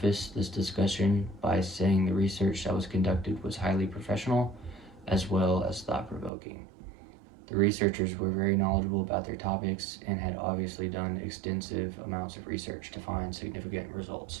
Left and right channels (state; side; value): drops out; left; at 6.3 s